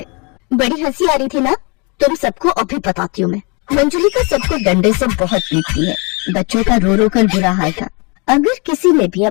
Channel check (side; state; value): right; quieter; 31.4 dB